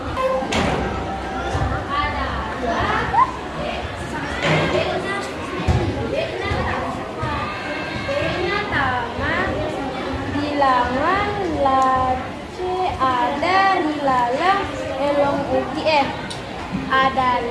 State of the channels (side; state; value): both; identical; correlation 1.00